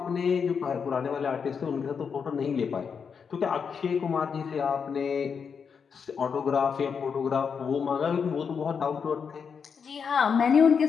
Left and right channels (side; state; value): right; quieter; 6.3 dB